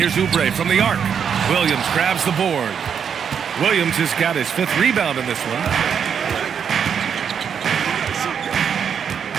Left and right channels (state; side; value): quieter; left; 7.4 dB